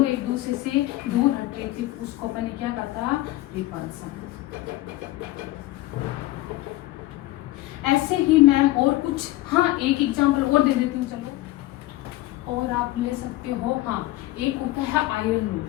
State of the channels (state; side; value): quieter; right; 17.4 dB